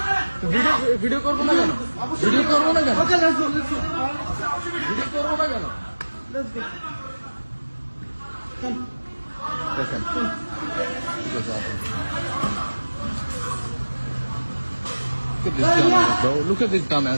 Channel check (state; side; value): inverted; both; correlation -1.00